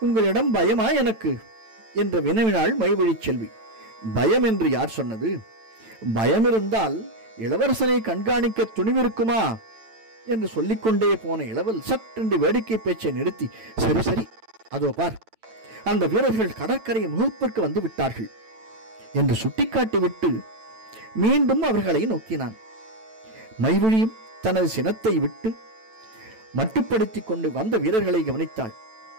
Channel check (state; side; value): late; left; 9.0 ms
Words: உங்களிடம் பயமா எனக்கு என்று வினவினாள் மைவழி செல்வி. பயம் என்று யார் சொன்னது? பயம் இருந்தால் இளவரசனை கண்காணிக்க துணிவிருக்குமா என்று சொல்லிக்கொண்டே போன இளவல் சற்றென்று வேடிக்கை பேச்சை நிறுத்தி, சரி சரி, அதோ பார், அந்த வீரர்கள் கடற்கரை முகப்பிற்கு வந்து விட்டார்கள் என்று சுட்டிக்காட்டிவிட்டு மீண்டும் அவர்களை நோக்கினான். மைவழியும் தனது சினத்தை விட்டு மட்டுப்படுத்திக் கொண்டு வந்த வீரர்களை கவனித்தாள்.